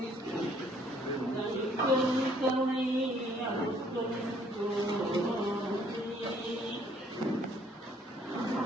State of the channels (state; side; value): normal; both; correlation 0.63